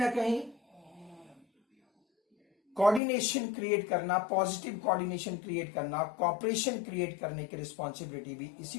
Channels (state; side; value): drops out; right; at 3.0 s